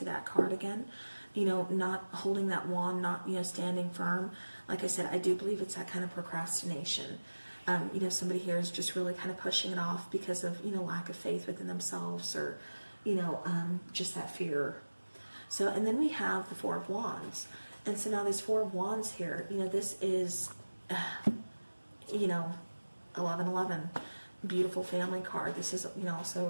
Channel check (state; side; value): inverted; both; correlation -1.00